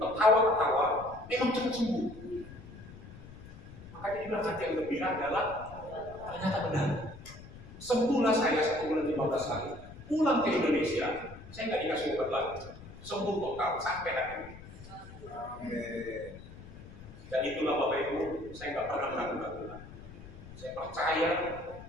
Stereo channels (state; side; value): noise; left; rumble, 16 dB below the sound